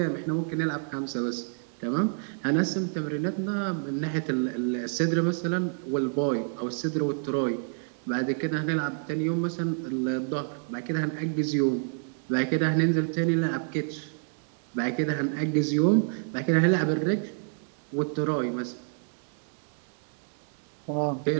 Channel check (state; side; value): silent; left; 59 dB below the other